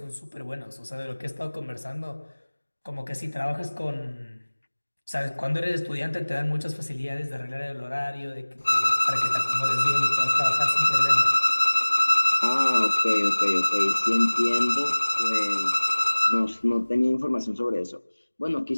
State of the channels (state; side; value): inverted; both; correlation -1.00